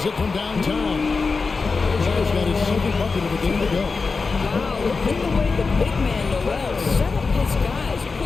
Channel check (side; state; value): right; quieter; 4.4 dB